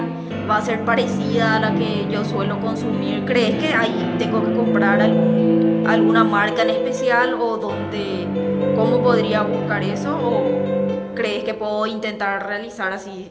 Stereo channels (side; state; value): both; identical; correlation 1.00